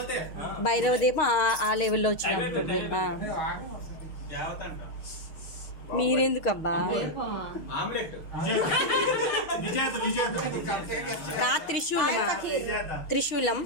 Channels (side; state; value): right; late; 6.4 ms